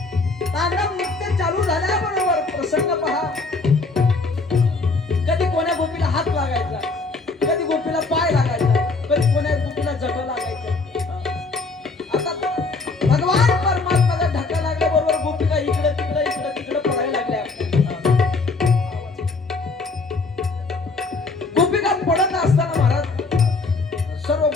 तांडव नृत्य चालू झाल्याबरोबर प्रसंग पहा, कधी कोण्या गोपीला हात लागायचा, कधी गोपीला पाय लागायचा, कधी कोण्या गोपीला जटा लागायचा. आता भगवान परमात्माचा धक्का लागल्याबरोबर गोपिका इकडे तिकडे इकडे तिकडे पडायला लागल्या. गोपिका पडत असताना महाराज सर्व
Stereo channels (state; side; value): quieter; right; 3.8 dB